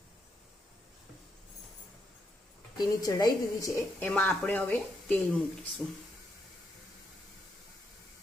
તેની ચડાઈ દીધી છે, એમાં આપણે હવે તેલ મૂકીશું।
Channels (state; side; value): normal; both; correlation 0.78